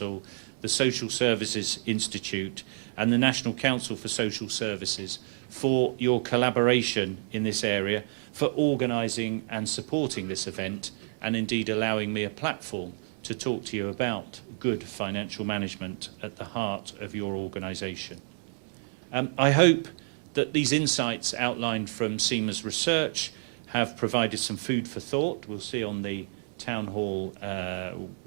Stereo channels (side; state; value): left; silent; digital silence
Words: the Social Services Institute and the National Council for Social Services for your collaboration in this area, for organising and supporting this event, and indeed allowing me a platform to talk to you about good financial management at the heart of your organisation. I hope that these insights outlined from CIMA's research have provided some food for thought. We'll see on the Townhall